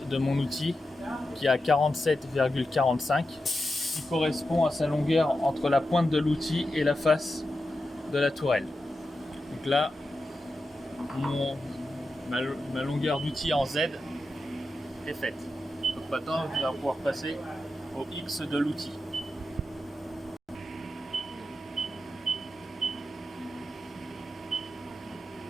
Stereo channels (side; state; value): both; normal; correlation 0.90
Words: de mon outil qui est à 47,45 qui correspond à sa longueur entre la pointe de l'outil et la face de la tourelle. Donc là, ma longueur d'outil en Z est faite. Donc maintenant, je vais pouvoir passer au X de l'outil.